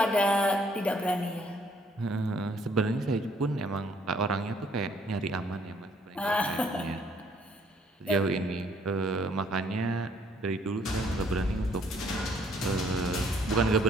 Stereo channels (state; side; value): normal; both; correlation 0.64